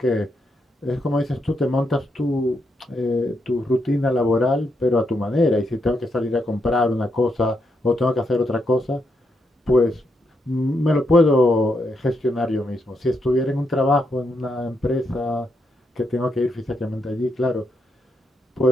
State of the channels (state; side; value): normal; both; correlation 0.80